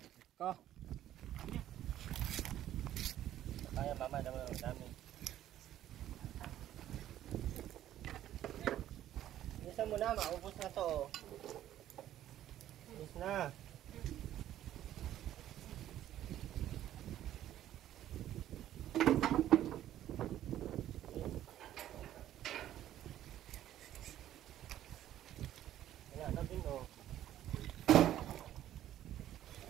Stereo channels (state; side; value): quieter; left; 12.3 dB